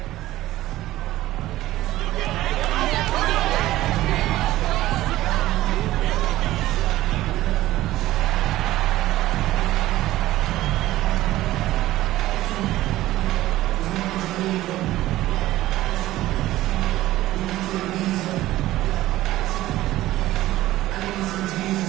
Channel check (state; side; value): quieter; left; 15.7 dB